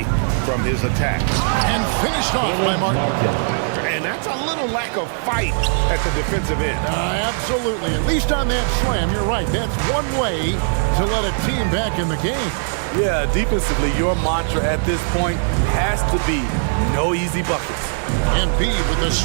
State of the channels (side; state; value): left; silent; 56 dB below the other